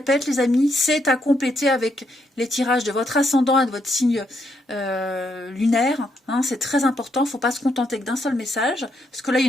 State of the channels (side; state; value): both; normal; correlation 0.77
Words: les amis, c'est à compléter avec les tirages de votre ascendant et de votre signe lunaire. C'est très important, il ne faut pas se contenter que d'un seul message, parce que là il